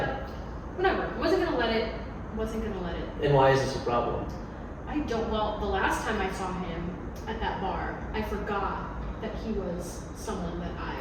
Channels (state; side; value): identical; both; correlation 1.00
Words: whatever. Wasn't gonna let it. And why is this a problem? I don't. Well, the last time I saw him at that bar, I forgot that he was someone that I.